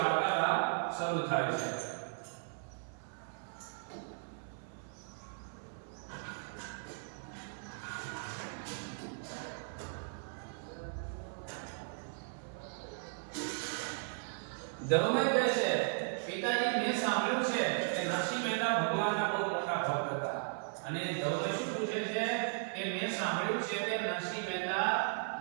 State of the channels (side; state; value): left; silent; 53 dB below the other